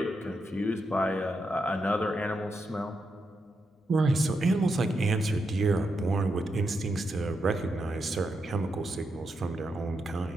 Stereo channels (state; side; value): normal; both; correlation 0.83